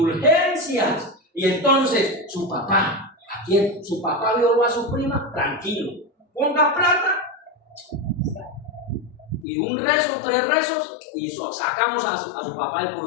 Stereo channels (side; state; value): right; drops out; at 9.5 s